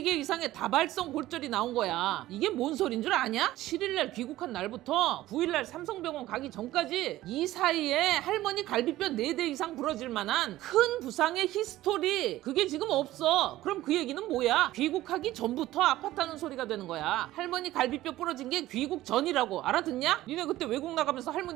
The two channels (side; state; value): left; quieter; 15.6 dB